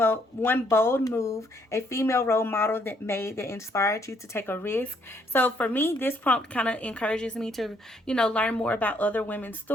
bold move a female role model that made that inspired you to take a risk? So for me, this prompt kind of encourages me to, you know, learn more about other women's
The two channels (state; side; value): normal; both; correlation 0.69